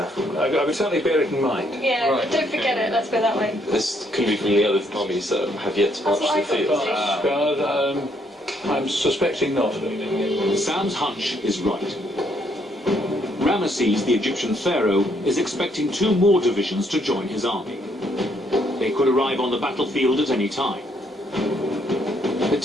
I would certainly bear it in mind. Yeah, right. Don't forget it, let's go that way. This could be from the other armies that have yet to march to the field. I'm suspecting not. Sam's hunch is right. Ramesses, the Egyptian pharaoh, is expecting 2 more divisions to join his army. They could arrive on the battlefield at any time. The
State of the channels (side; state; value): both; normal; correlation 0.70